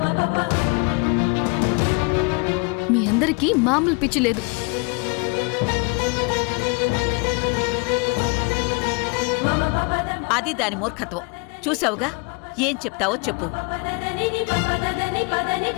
మీ అందరికీ మామూలు పిచ్చి లేదు. అది దాని మూర్ఖత్వం. చూసావుగా, ఏం చెప్తావో చెప్పు.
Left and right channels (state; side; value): quieter; right; 31.1 dB